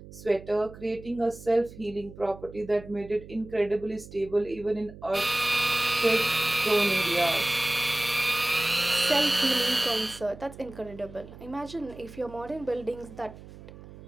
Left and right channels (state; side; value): noise; right; hum, 17 dB below the sound